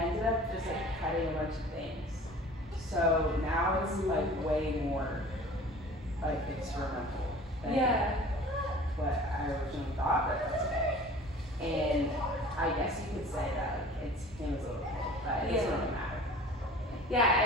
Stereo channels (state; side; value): normal; both; correlation 0.44